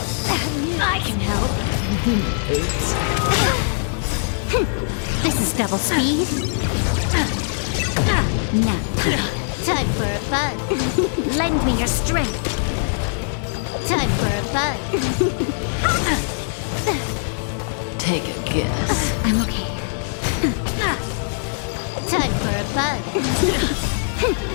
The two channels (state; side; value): silent; right; 61 dB below the other